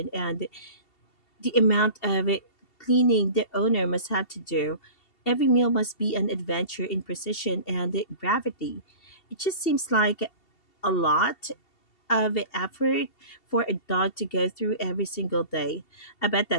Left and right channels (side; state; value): right; late; 2.7 ms